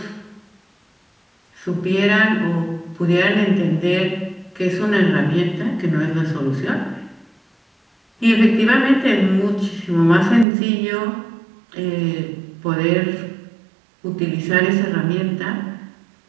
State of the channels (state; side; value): drops out; left; at 10.5 s